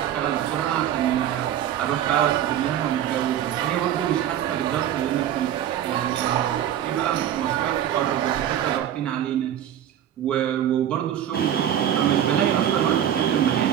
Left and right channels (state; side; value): quieter; left; 10.6 dB